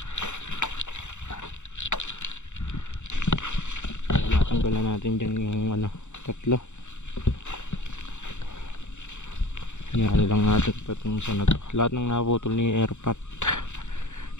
natin dyan yung ano, tatlo. Hinahali lang natin patong sa na to. Lahat ng naputol ni airpot.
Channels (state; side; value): late; right; 0.84 ms